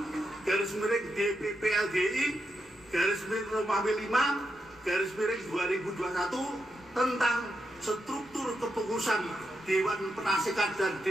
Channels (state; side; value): normal; both; correlation 0.85